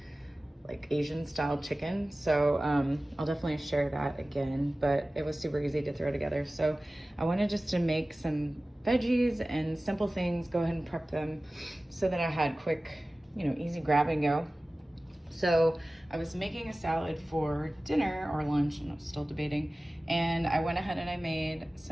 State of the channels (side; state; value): both; normal; correlation 0.97